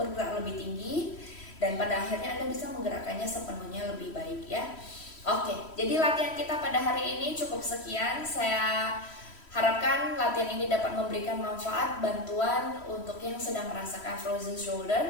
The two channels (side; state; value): right; late; 3.1 ms